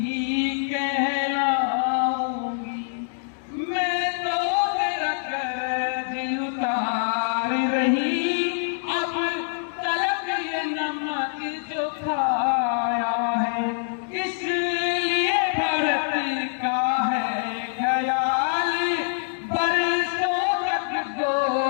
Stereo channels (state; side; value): silent; right; digital silence